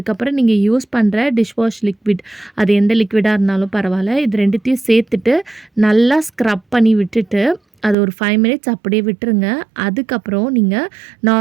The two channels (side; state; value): left; drops out; at 8.0 s